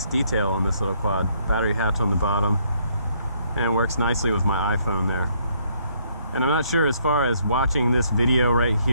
detail on this little quad. Battery hatch on the bottom, and it works nicely with my iPhone there. And I'm not sure as far as watching this video right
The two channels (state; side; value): inverted; both; correlation -0.69